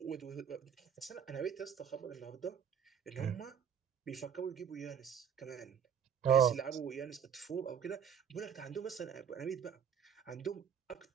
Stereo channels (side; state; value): left; quieter; 8.0 dB